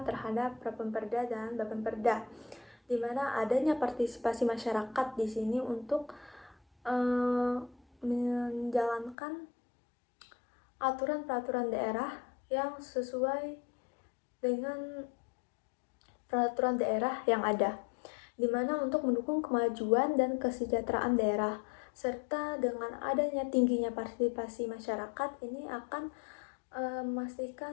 terhadap Propemperda dan Bapemperda, di mana adanya partisipasi masyarakat di sini untuk menjalankan aturan peraturan daerah yang sesuai dengan peraturan daerah yang ada, di mana untuk mendukung kemajuan dan kesejahteraan daerah, serta dengan adanya tingginya partisipasi masyarakat ini akan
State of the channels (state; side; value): drops out; right; at 9.2 s